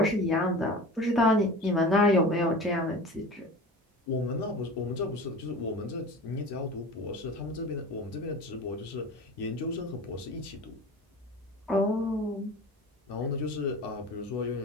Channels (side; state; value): both; normal; correlation 0.35